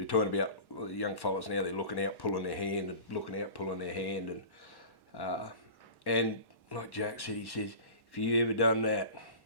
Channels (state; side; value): late; right; 1.1 ms